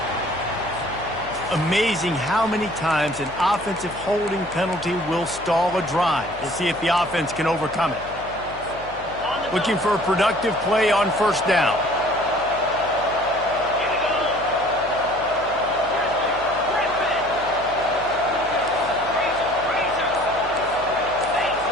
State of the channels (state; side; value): noise; left; hum, 18 dB below the sound